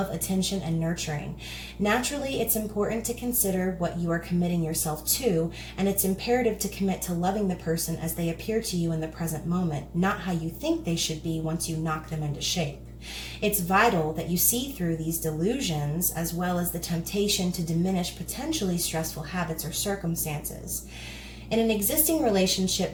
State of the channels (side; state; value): both; identical; correlation 1.00